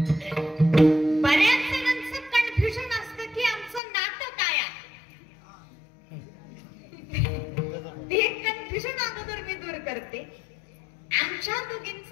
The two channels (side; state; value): right; drops out; at 3.8 s